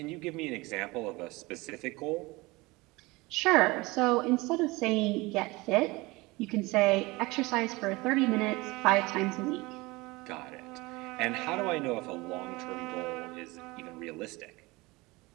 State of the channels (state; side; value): quieter; left; 22.8 dB